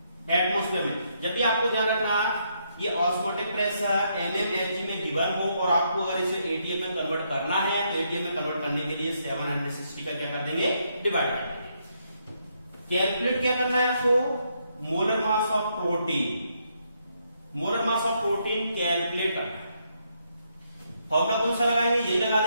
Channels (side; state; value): both; inverted; correlation -0.76